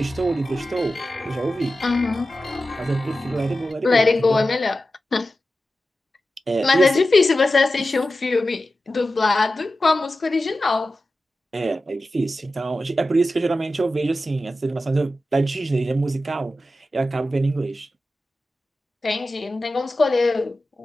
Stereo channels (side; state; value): both; normal; correlation 0.93